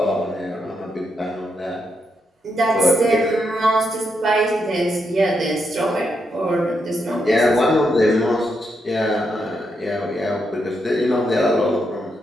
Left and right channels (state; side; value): normal; both; correlation 0.81